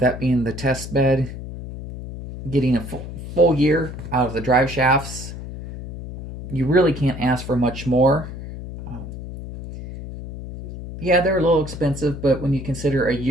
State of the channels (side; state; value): left; noise; hum, 10 dB below the sound